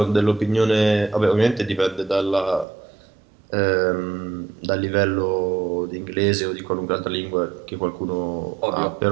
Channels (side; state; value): left; drops out; at 2.7 s